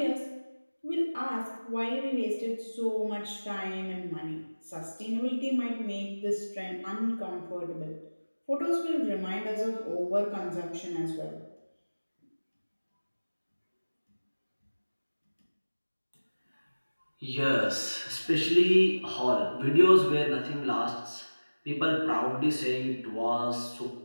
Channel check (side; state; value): both; inverted; correlation -1.00